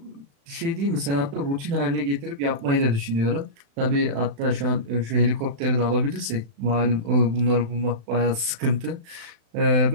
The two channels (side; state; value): left; late; 36 ms